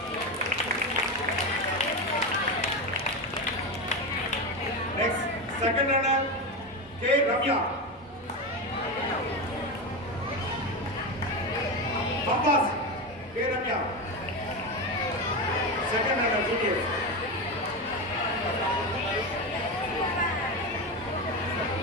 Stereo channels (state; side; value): normal; both; correlation 0.17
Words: Next, second runner, K. Ramya. Compass, K. Ramya. Second runner, juniors.